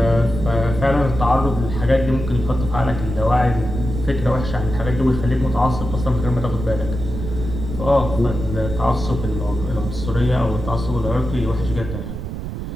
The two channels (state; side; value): noise; right; rumble, 7 dB below the sound